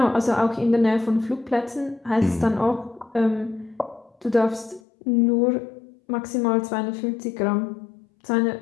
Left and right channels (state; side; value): drops out; right; at 4.8 s